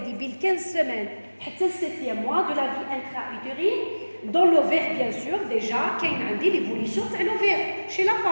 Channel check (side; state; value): both; inverted; correlation -1.00